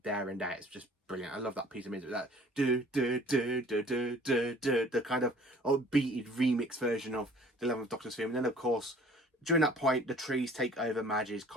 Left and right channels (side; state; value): both; normal; correlation 0.51